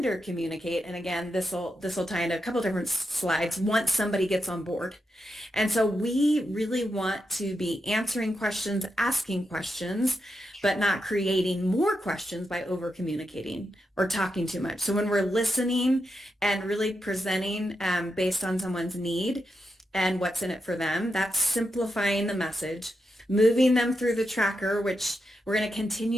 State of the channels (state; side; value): normal; both; correlation 0.86